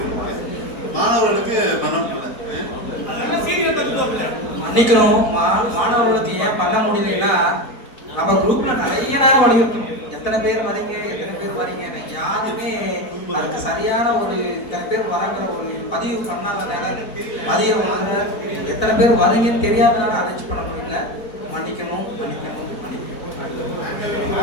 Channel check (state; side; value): late; right; 4.0 ms